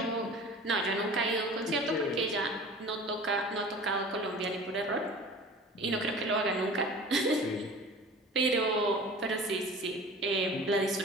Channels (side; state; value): both; normal; correlation 0.41